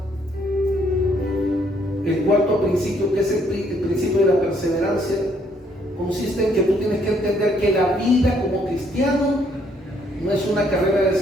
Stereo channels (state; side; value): normal; both; correlation 0.68